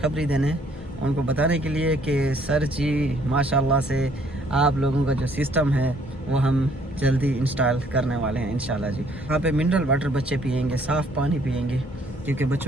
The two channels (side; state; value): both; normal; correlation 0.63